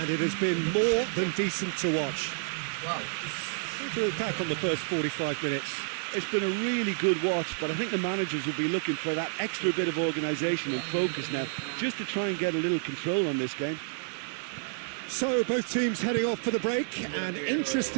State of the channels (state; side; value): silent; left; 58 dB below the other